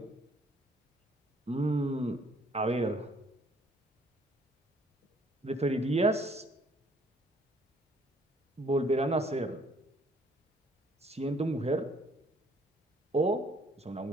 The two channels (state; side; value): normal; both; correlation 0.63